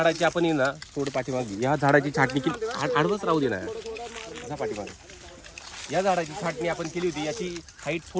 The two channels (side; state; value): both; identical; correlation 1.00